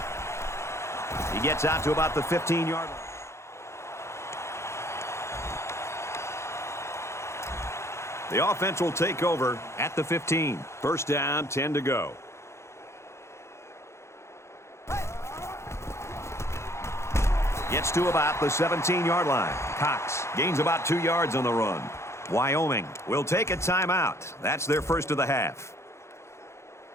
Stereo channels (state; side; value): late; right; 0.13 ms